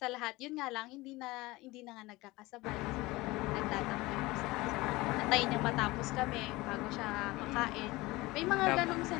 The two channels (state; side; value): quieter; right; 20.8 dB